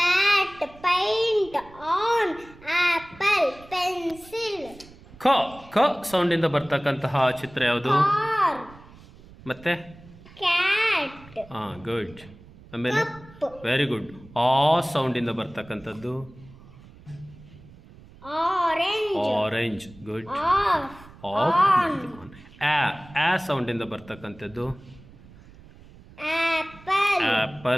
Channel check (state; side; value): noise; right; rumble, 22 dB below the sound